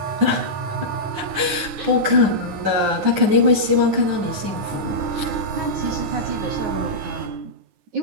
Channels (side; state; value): left; late; 9.6 ms